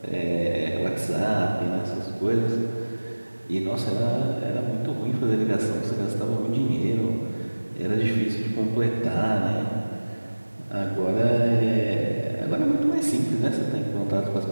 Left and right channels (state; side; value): inverted; both; correlation -1.00